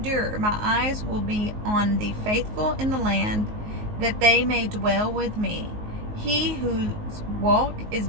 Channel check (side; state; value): left; late; 19 ms